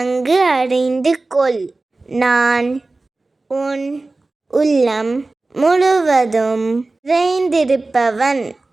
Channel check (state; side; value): quieter; left; 3.3 dB